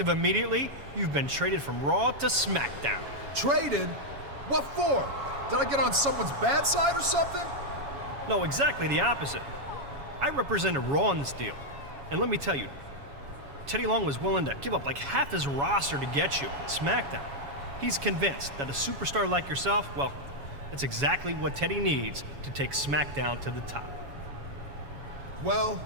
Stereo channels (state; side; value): late; left; 7.2 ms